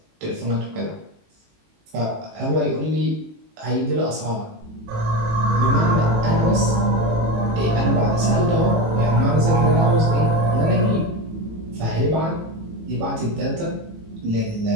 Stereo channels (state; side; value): late; left; 18 ms